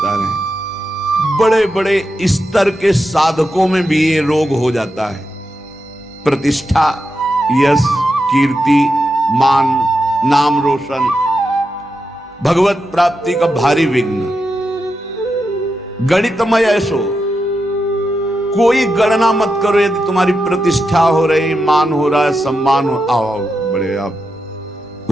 रहे हैं। बड़े बड़े स्तर के साधकों में भी ये रोग हो जाता है। प्रतिष्ठा, यश, कीर्ति, मान, नाम रोशन, भगवत प्राप्ति का भारी विघ्न। गणितमय ऐसो, कोई गणना मत करो। यदि तुम्हारी प्रतिष्ठा हो रही, मान हो रहा है, सम्मान हो, आओ बड़े आप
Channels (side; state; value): both; normal; correlation 0.87